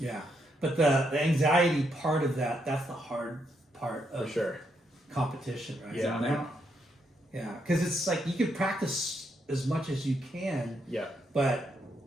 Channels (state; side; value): normal; both; correlation 0.78